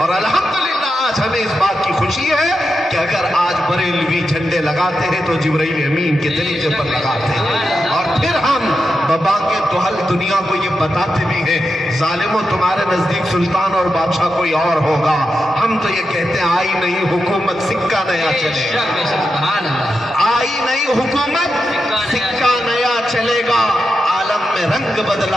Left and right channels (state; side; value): normal; both; correlation 0.88